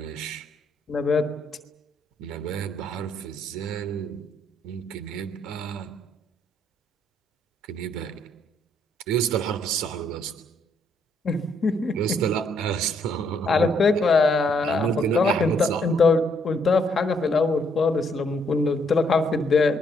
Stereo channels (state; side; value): normal; both; correlation 0.70